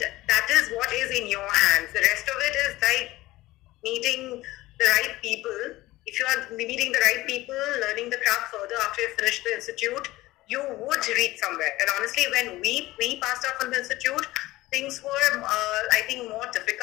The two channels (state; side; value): quieter; right; 18.1 dB